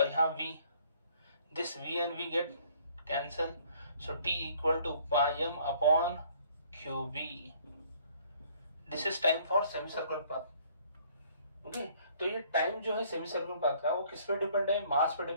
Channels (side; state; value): both; inverted; correlation -0.60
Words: यहाँ v, this v and v get cancel, so t equal to pi m upon qb. This is time for semicircular path. Okay, तो ये टाइम जो है सेमी सर्कुलर पाथ का, वो किस पे डिपेंड है, मास पे